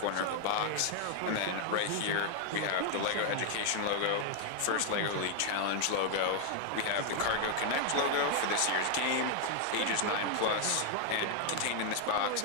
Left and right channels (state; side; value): different; both; correlation 0.00